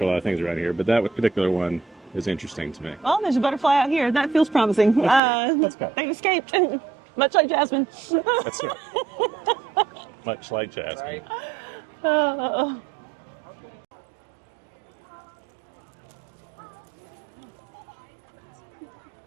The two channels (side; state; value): left; drops out; at 5.2 s